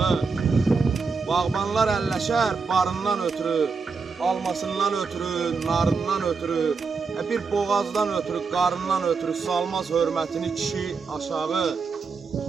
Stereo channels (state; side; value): quieter; left; 4.9 dB